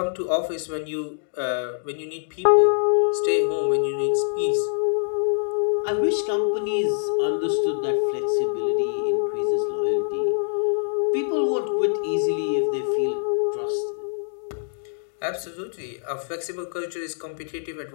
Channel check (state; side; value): silent; right; digital silence